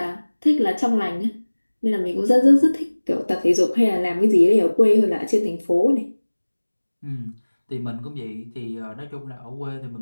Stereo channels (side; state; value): both; inverted; correlation -1.00